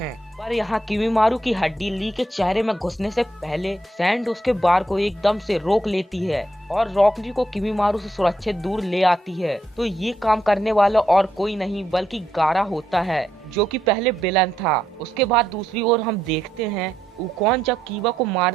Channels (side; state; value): both; normal; correlation 0.79